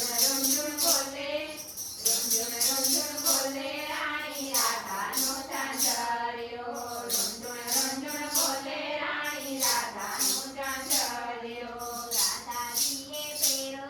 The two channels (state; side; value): identical; both; correlation 1.00